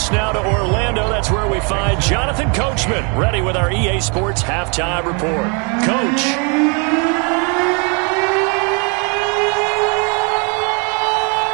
now to Orlando, that's where we find Jonathan Coachman, ready with our EA Sports Halftime Report. Coach.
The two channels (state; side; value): quieter; left; 34.8 dB